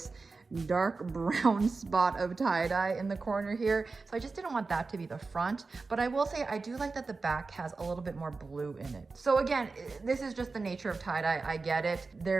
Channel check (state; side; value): quieter; left; 4.0 dB